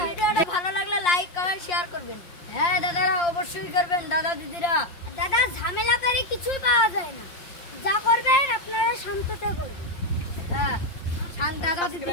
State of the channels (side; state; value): right; late; 5.6 ms